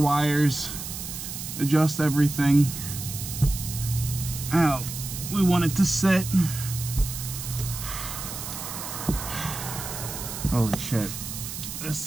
adjust everything how we want it to sit. Holy shit,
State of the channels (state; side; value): noise; right; hiss, 8 dB below the sound